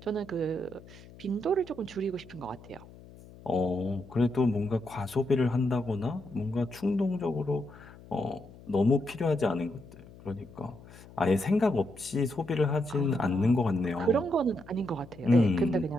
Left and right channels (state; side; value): noise; left; hum, 20 dB below the sound